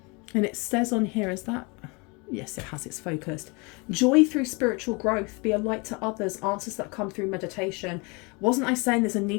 And it says on here, is that... Yes, it has. It's focused. Joy through spiritual growth. Be a light to others. Answers that come through meditation. Wasn't I saying there's a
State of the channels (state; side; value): quieter; right; 29.3 dB